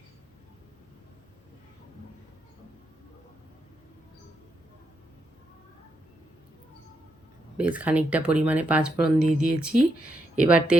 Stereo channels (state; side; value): normal; both; correlation 0.81